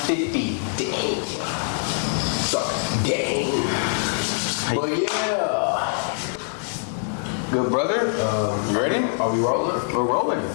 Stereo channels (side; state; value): right; silent; digital silence